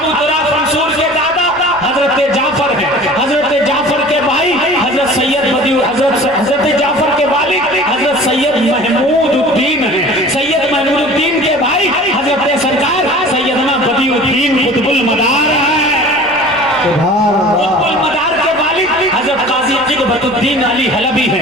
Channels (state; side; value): noise; left; rumble, 26 dB below the sound